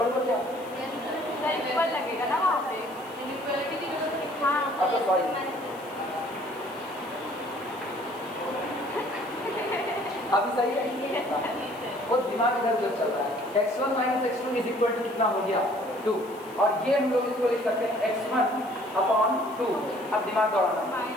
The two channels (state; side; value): noise; left; hiss, 23 dB below the sound